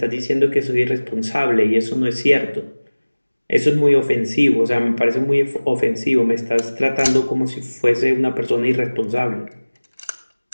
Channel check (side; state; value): both; inverted; correlation -1.00